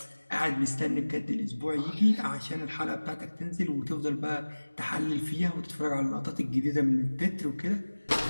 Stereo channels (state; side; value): inverted; both; correlation -1.00